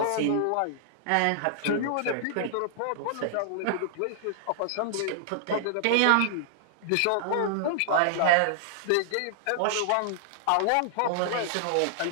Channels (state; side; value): different; both; correlation -0.01